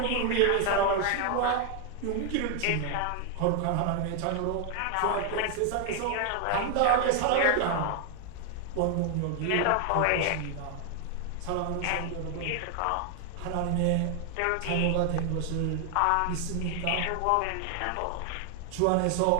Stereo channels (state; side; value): different; both; correlation 0.00